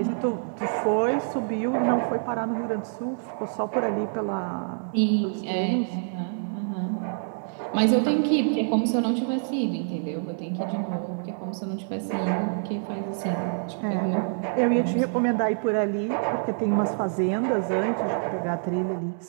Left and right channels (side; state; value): left; silent; 61 dB below the other